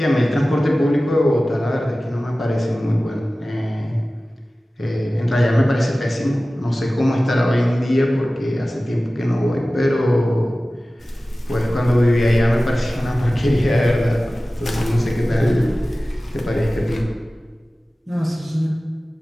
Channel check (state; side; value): normal; both; correlation 0.96